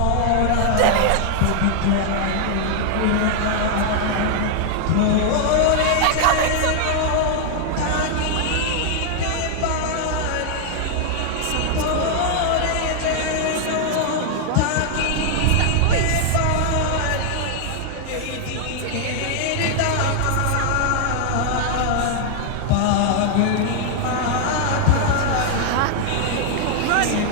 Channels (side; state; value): both; different; correlation 0.00